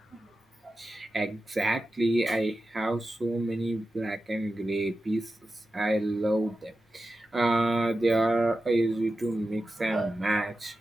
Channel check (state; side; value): normal; both; correlation 0.92